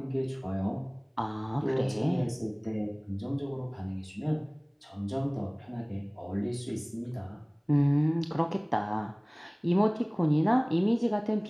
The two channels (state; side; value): identical; both; correlation 1.00